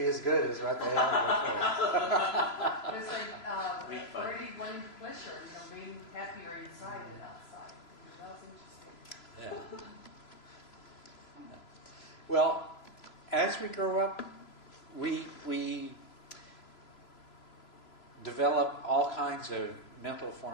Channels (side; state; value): right; late; 3.0 ms